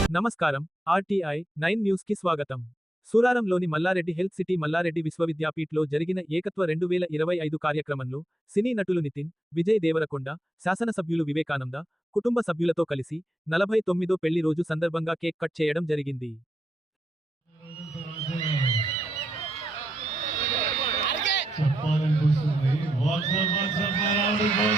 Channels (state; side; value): normal; both; correlation 0.82